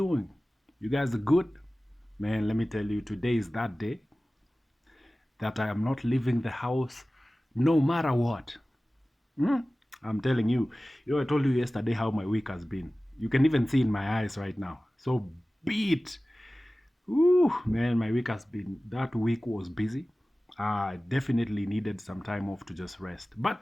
You guys are good? Man, let me tell you, today is that day that I am not leaving the house no matter what. Hmm? I'm telling you. I told you yesterday how my week has been. You can even see in my eyes right now. So beat. Ooh, man, my week has been, that week was busy. I definitely needed some time off to just rest. But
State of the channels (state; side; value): normal; both; correlation 0.97